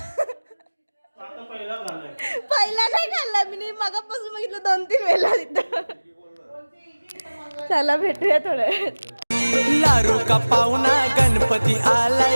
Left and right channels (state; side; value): inverted; both; correlation -1.00